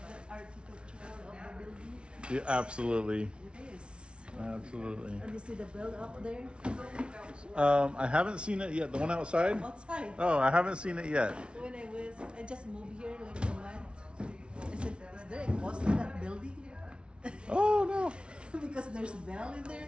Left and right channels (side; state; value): left; late; 0.058 ms